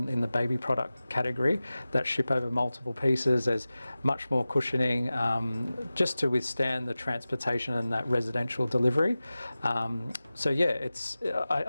the baby product category that ship over multiple pieces, there's much more cushioning just to withstand the transportation and that residential delivery. So yeah,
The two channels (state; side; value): inverted; both; correlation -0.96